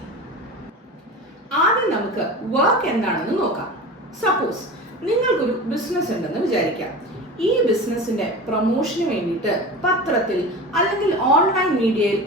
ആദ്യം നമുക്ക് വർക്ക് എന്താണെന്ന് നോക്കാം. സപ്പോസ് നിങ്ങൾക്കൊരു ബിസിനസ് ഉണ്ടെന്ന് വിചാരിക്കാം. ഈ ബിസിനസിന്റെ പ്രൊമോഷന് വേണ്ടിയിട്ട് പത്രത്തിൽ അല്ലെങ്കിൽ ഓൺലൈൻ മീഡിയയിൽ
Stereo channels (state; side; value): normal; both; correlation 0.31